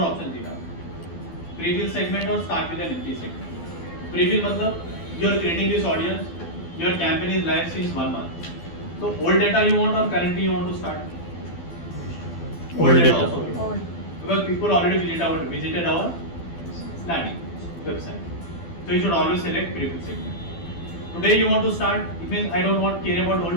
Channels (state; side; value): late; right; 12 ms